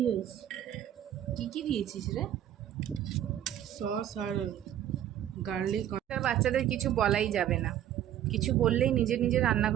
হয়েছে। কি কি দিয়েছিস রে? সস আর গার্লিক। বাচ্চাদের কিছু বলাই যাবে না, কিছু বললেই নিজে নিজে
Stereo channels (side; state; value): left; quieter; 11.3 dB